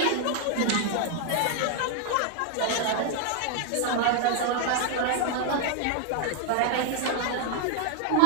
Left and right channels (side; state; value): both; different; correlation 0.00